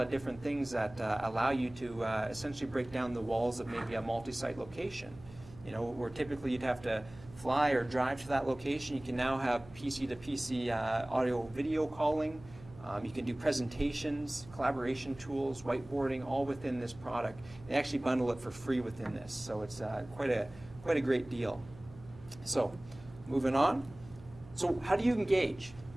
of different things that allow you to essentially break down the walls of maybe a multi-site location. Where typically you'd have to fly or drive to that location, you can now have PC to PC audio video calling You can do presentations, collaboration tools, whiteboarding, all within this product. They actually bundle it for free within this, so it's quite a great deal. So, moving on. So, how do you engage?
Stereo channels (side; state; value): right; noise; hum, 20 dB below the sound